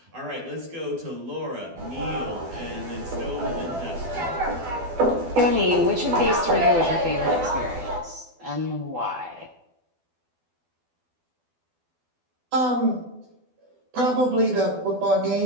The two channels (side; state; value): left; late; 12 ms